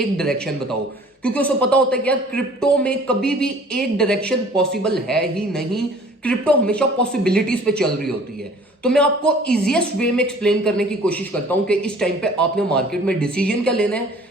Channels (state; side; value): normal; both; correlation 0.51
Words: डायरेक्शन बताओ, क्योंकि उसे पता होता है कि यार क्रिप्टो में कभी भी एक डायरेक्शन पॉसिबल है ही नहीं। क्रिप्टो हमेशा पॉसिबिलिटीज पे चल रही होती है। तो मैं आपको इजीएस्ट वे में एक्सप्लेन करने की कोशिश करता हूं कि इस टाइम पे आपने मार्केट में डिसीजन क्या लेना है,